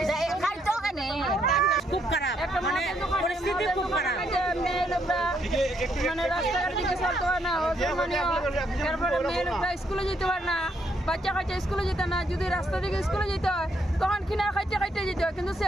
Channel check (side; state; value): both; normal; correlation 0.74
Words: খুব খারাপ মানে পরিস্থিতি খুব খারাপ মানে রাস্তাঘাট দিকে চলতে পারে না তারপরে মেয়ে লোকরা স্কুলে যেতে পারে না বাচ্চা কাচ্চা স্কুলে যেতে না যদি রাস্তা দিকে স্কুলে যেতে হয় তখন কিনা খাইতে যেতে হয় কিন্তু